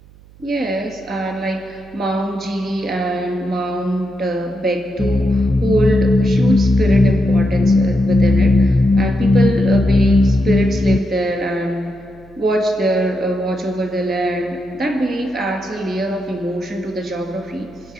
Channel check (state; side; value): noise; right; hum, 25 dB below the sound